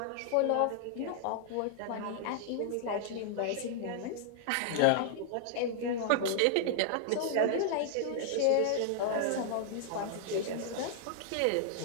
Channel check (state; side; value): different; both; correlation -0.01